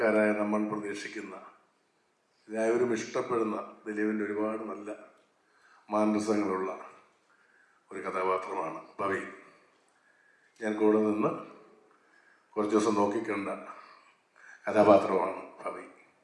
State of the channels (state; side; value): identical; both; correlation 1.00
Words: നമ്മൾ പ്രതീക്ഷിക്കുന്ന, എല്ലാവരും ഇഷ്ടപ്പെടുന്ന ദിലീപിൻ്റെ ഒരുപാട് നല്ല മാനസങ്ങളുള്ള ഒരു കഥാപാത്രമാണ് പവി. ഞാൻ കൂടെ നിന്ന് കുറച്ച് ദിവസം നോക്കിക്കണ്ട കഥാപാത്രമാണ് പവി.